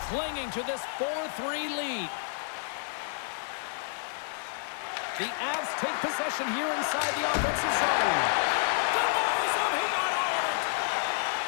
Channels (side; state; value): right; silent; 58 dB below the other